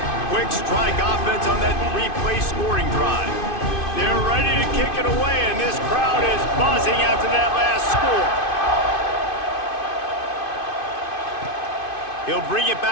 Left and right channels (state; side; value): late; right; 2.5 ms